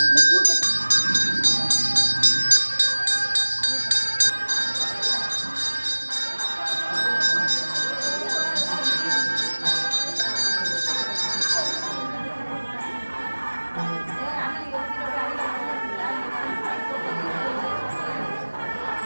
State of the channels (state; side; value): inverted; both; correlation -1.00